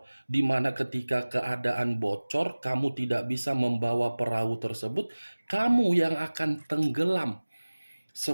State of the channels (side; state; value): both; inverted; correlation -1.00